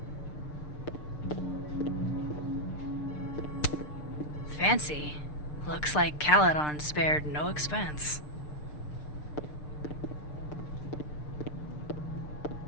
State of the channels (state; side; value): late; right; 6.7 ms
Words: Fancy. Looks like Caledon spared no expense.